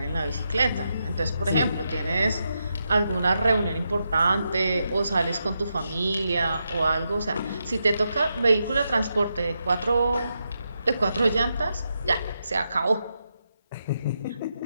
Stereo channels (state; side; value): inverted; both; correlation -0.85